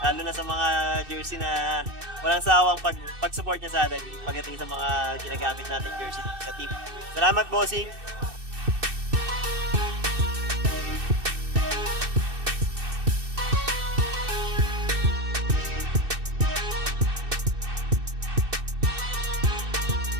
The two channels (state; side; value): late; left; 2.6 ms